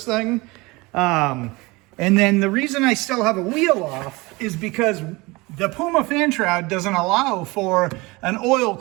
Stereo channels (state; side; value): quieter; left; 23.6 dB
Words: thing. And then the reason I still have a wheel off is because the Puma fan shroud doesn't allow for an oil